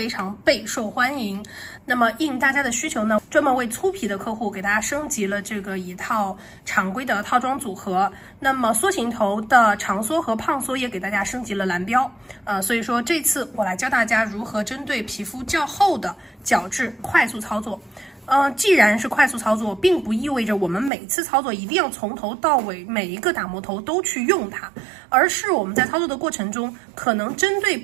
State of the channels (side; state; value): left; drops out; at 20.9 s